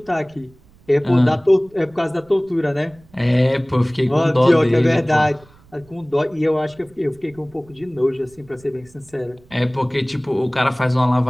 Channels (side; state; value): right; noise; rumble, 28 dB below the sound